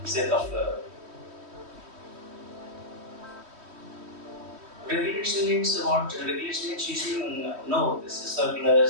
sake of regulation means what? Regulation means you know this is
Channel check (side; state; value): left; late; 3.1 ms